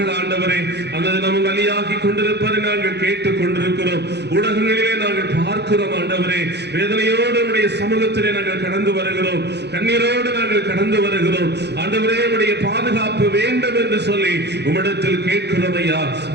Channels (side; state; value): left; late; 0.49 ms